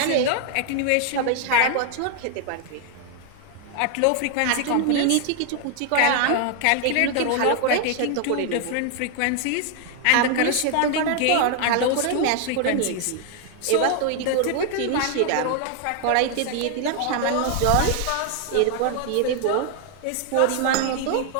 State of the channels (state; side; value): different; both; correlation 0.00